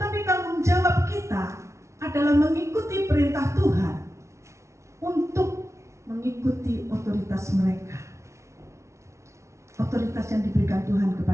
tanggung jawab kita adalah mengikuti perintah Tuhan untuk mengikuti otoritas mereka, otoritas yang diberikan Tuhan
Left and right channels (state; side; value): late; left; 0.14 ms